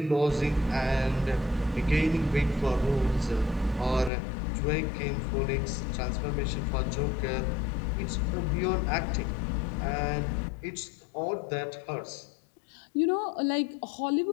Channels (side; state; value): right; drops out; at 4.1 s